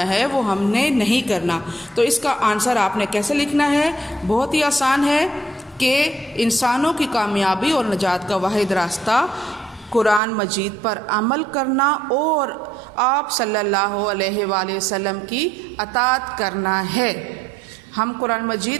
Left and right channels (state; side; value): drops out; left; at 10.2 s